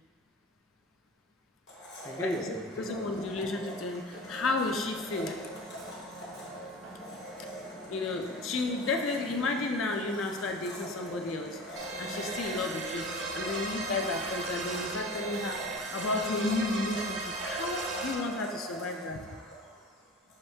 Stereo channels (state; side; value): normal; both; correlation 0.35